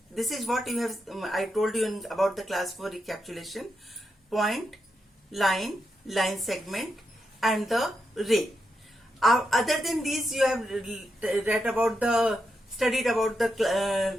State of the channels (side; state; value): both; normal; correlation 0.85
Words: This is what you have, I told you about the class 4 recapitulation. Point, line segment and the ray. Other than these, you have studied about the